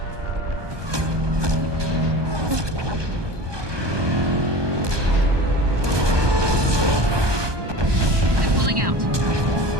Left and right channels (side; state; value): left; late; 1.2 ms